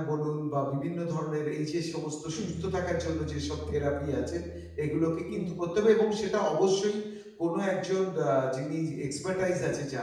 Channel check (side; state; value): both; identical; correlation 1.00